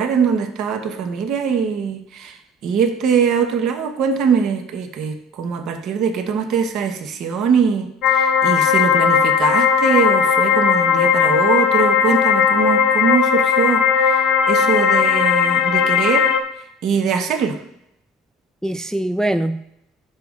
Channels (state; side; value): normal; both; correlation 0.35